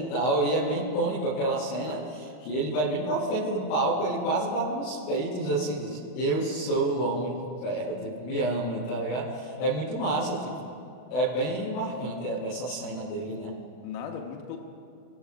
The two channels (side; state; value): right; late; 39 ms